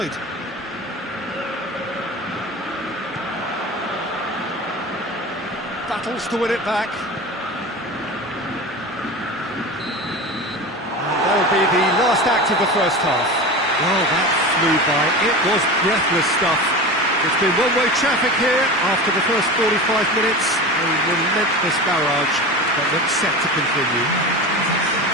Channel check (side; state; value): both; normal; correlation 0.29